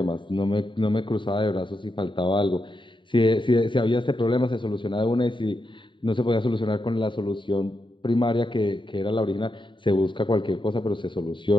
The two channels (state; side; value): late; right; 0.23 ms